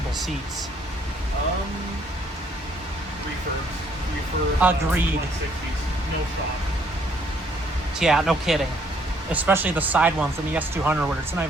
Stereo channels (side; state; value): both; normal; correlation 0.65